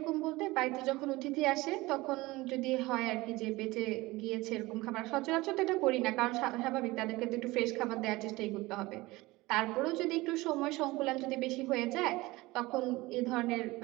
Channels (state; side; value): quieter; left; 20.6 dB